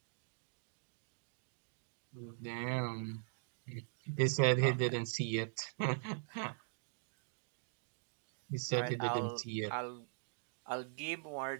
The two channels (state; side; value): silent; left; digital silence